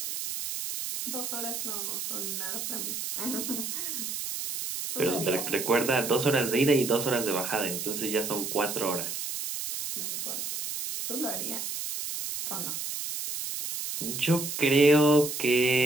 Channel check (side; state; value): right; noise; hiss, 4 dB below the sound